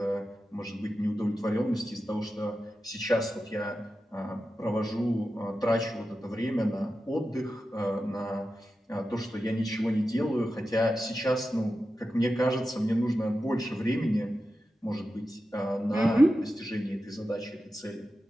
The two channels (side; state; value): both; normal; correlation 0.91